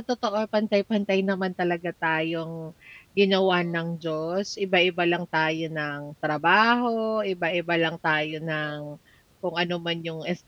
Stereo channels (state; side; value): identical; both; correlation 1.00